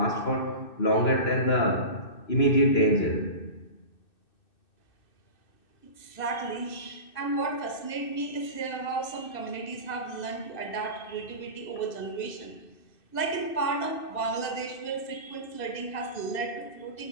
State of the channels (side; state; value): right; late; 2.6 ms